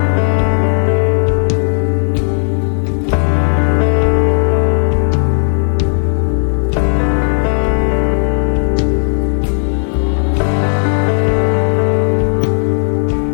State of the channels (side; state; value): right; silent; 65 dB below the other